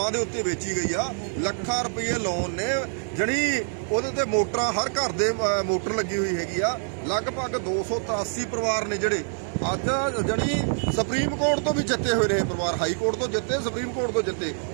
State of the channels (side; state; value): left; silent; digital silence